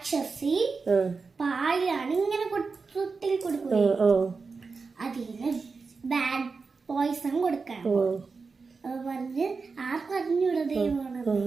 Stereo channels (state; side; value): quieter; left; 4.6 dB